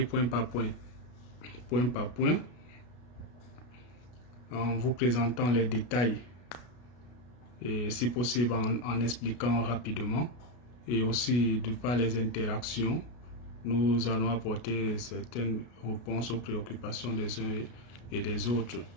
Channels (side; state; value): right; late; 33 ms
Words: point par point en vous présentant les détails et si possible en expliquant rapidement, et aussi de par les interactions, nous allons apporter certaines réponses aux préoccupations des uns et des autres.